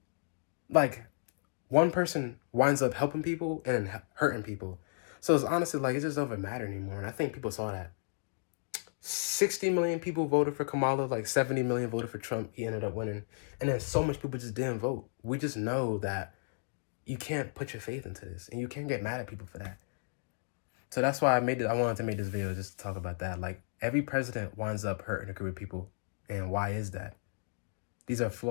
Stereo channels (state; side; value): silent; right; digital silence